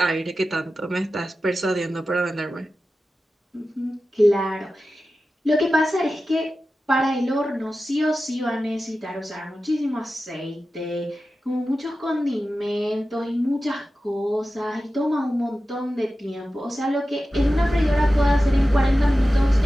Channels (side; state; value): both; normal; correlation 0.94